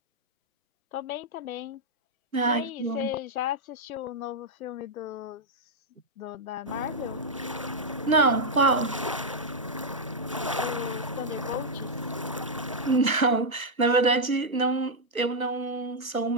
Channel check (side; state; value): both; normal; correlation -0.03